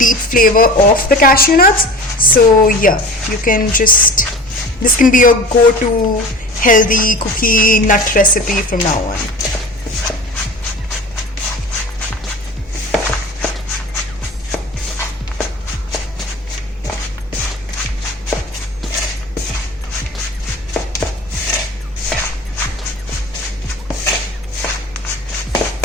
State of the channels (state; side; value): normal; both; correlation 0.37